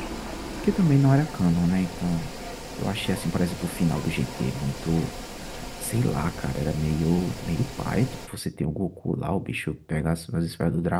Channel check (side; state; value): both; identical; correlation 1.00